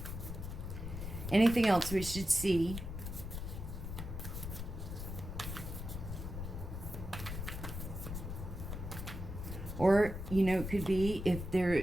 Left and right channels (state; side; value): noise; left; rumble, 6 dB below the sound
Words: Anything else we should see? Or, you know, it could be if their